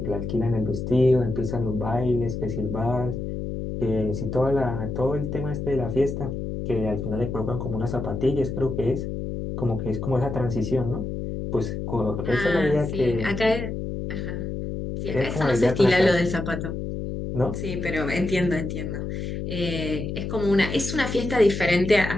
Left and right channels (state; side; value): noise; left; hum, 4 dB below the sound